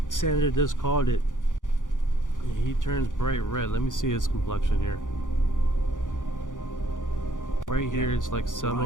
Sandra does called it. He turns bright red. Let me see his complexion here. Right here, it's like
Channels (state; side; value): late; right; 0.87 ms